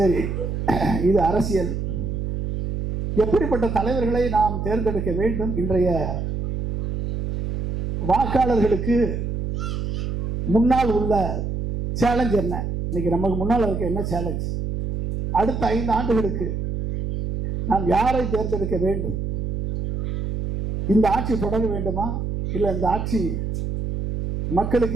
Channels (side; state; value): right; noise; hum, 3 dB below the sound